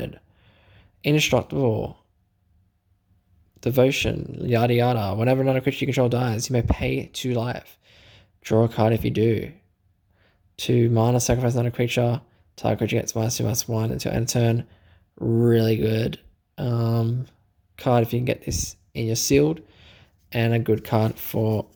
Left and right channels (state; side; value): identical; both; correlation 1.00